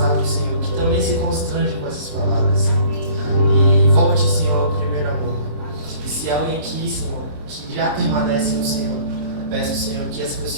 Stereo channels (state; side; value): late; left; 26 ms